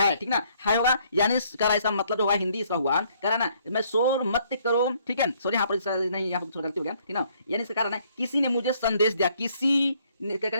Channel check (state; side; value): inverted; both; correlation -0.66